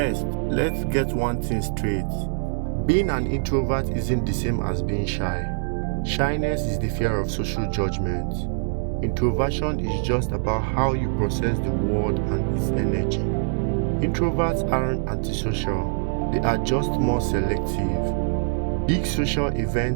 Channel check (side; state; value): left; silent; digital silence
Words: let's get one thing straight. Being an introvert isn't the same as being shy. Shyness is the fear of social judgment. Introversion is just about how you process the world and its energy. Introverts aren't antisocial, they are just more selective. Big social